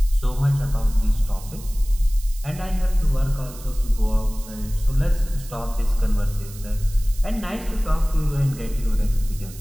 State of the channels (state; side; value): noise; right; hiss, 18 dB below the sound